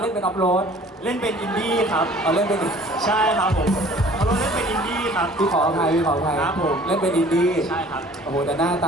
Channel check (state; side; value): normal; both; correlation 0.51